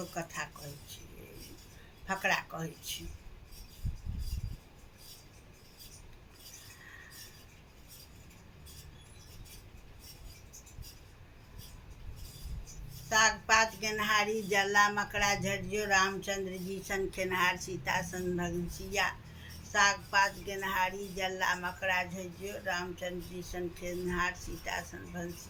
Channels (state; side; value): identical; both; correlation 1.00